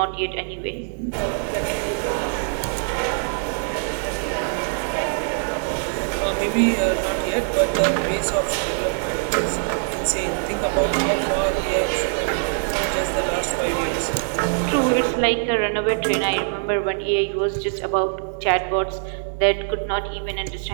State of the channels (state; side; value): silent; left; 63 dB below the other